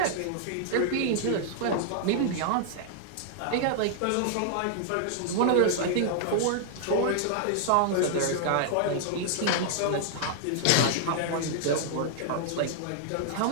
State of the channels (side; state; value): both; different; correlation -0.01